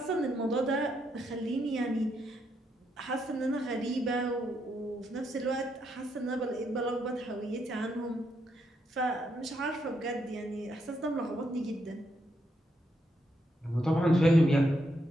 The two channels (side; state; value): both; normal; correlation 0.78